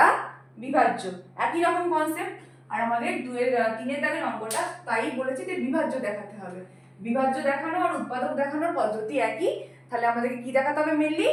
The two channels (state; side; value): identical; both; correlation 1.00